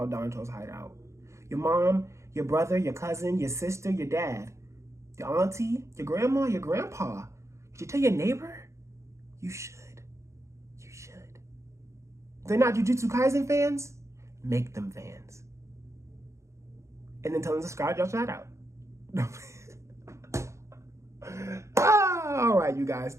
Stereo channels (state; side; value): late; left; 0.14 ms